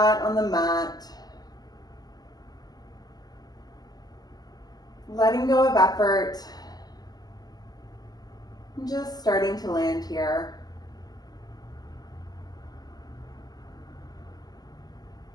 on the mat. Letting go of effort, and just starting to land here.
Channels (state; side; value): late; right; 0.19 ms